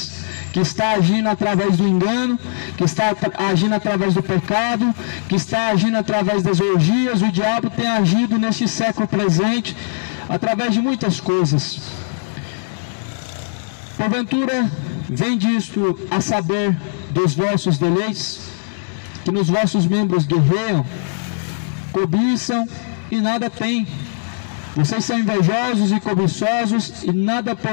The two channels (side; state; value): right; silent; digital silence